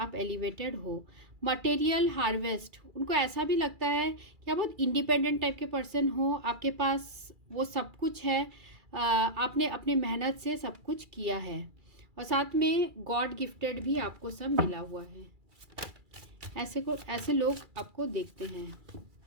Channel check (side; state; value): left; late; 2.3 ms